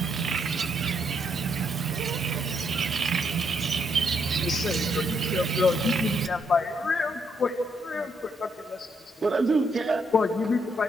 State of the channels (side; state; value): both; normal; correlation 0.75